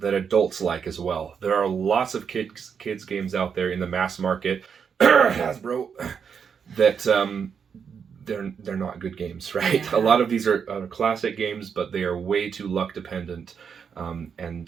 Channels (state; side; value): quieter; left; 6.8 dB